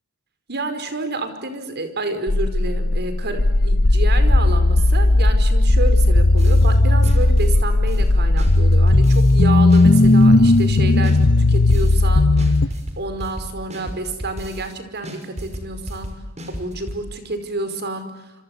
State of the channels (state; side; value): normal; both; correlation 0.84